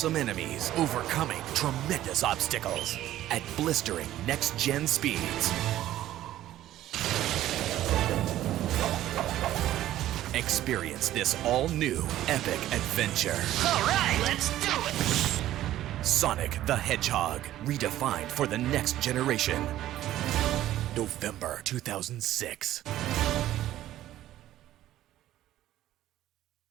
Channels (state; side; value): quieter; left; 13.6 dB